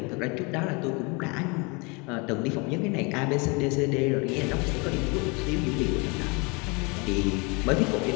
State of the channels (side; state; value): right; quieter; 29.5 dB